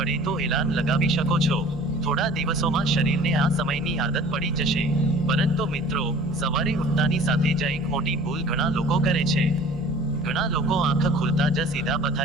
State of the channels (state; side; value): noise; right; hum, 19 dB below the sound